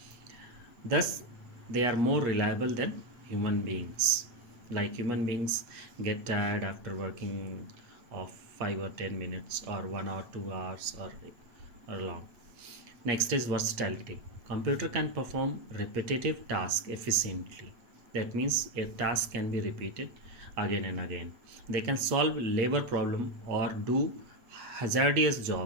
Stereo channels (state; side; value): late; left; 8.4 ms